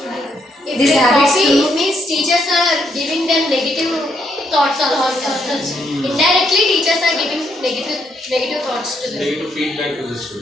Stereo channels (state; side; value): normal; both; correlation 0.75